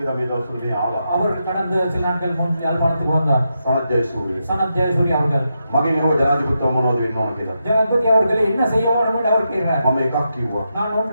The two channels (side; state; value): both; inverted; correlation -0.85